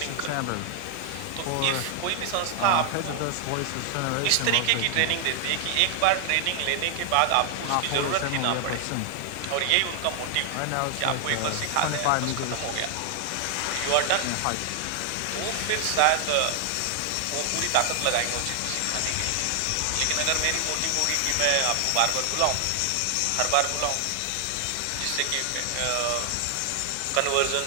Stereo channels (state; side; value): different; both; correlation 0.00